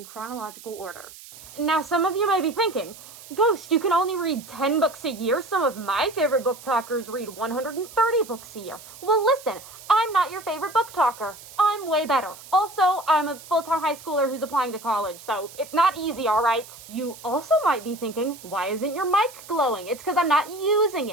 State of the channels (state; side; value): noise; right; hiss, 18 dB below the sound